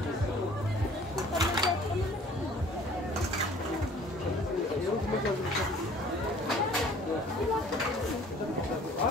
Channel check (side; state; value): both; normal; correlation 0.52